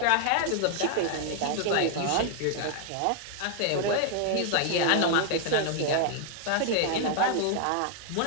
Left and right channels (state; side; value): different; both; correlation 0.00